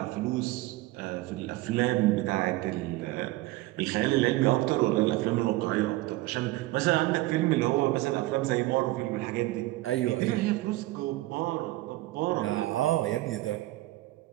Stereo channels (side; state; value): left; quieter; 18.5 dB